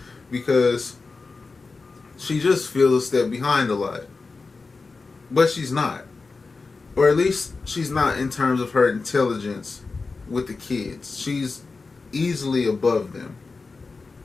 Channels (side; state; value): right; quieter; 4.1 dB